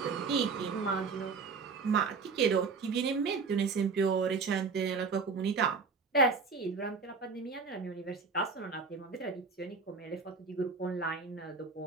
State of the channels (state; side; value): quieter; left; 4.8 dB